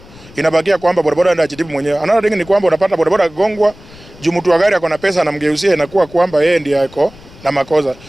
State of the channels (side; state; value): left; noise; rumble, 22 dB below the sound